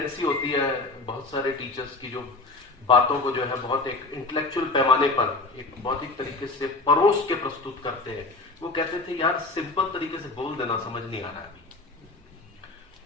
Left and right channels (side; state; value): right; quieter; 3.3 dB